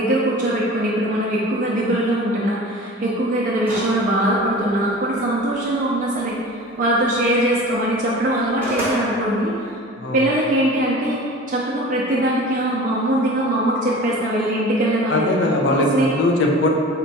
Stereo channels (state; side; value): normal; both; correlation 0.38